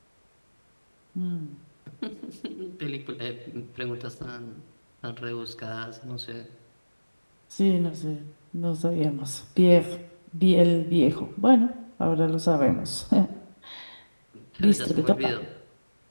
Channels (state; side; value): inverted; both; correlation -1.00